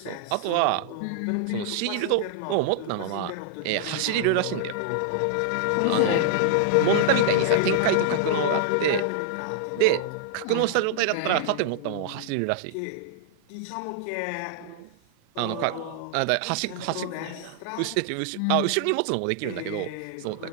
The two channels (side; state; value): both; different; correlation -0.01